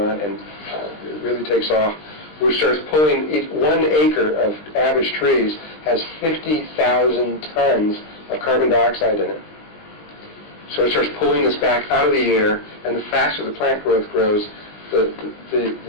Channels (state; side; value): late; right; 20 ms